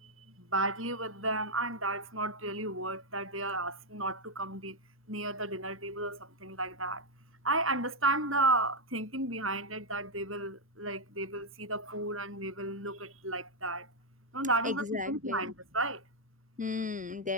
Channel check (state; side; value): normal; both; correlation 0.00